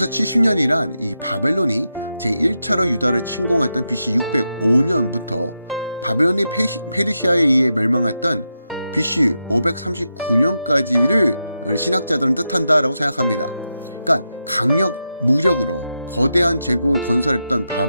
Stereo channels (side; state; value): both; inverted; correlation -0.87